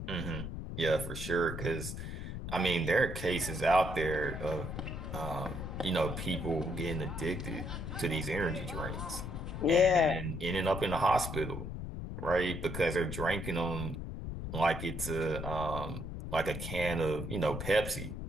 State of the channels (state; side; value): noise; left; rumble, 6 dB below the sound